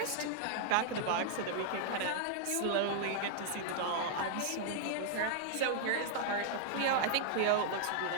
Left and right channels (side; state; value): both; different; correlation -0.01